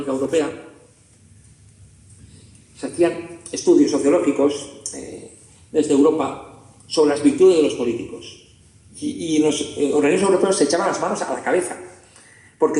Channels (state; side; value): identical; both; correlation 1.00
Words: Europea, se hacían estudios sociológicos desde Europa sobre las virtudes de los políticos. Y los organismos europeos se echaban las manos a la cabeza, porque